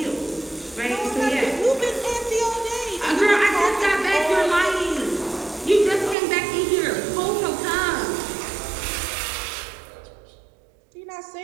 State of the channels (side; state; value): left; drops out; at 6.2 s